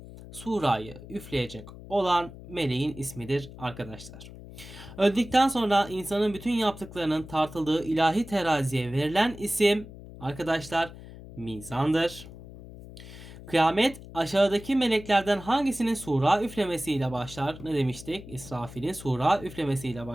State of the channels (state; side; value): noise; left; hum, 15 dB below the sound